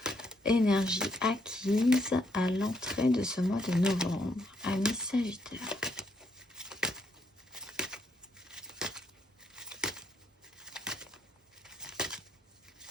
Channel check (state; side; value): normal; both; correlation 0.74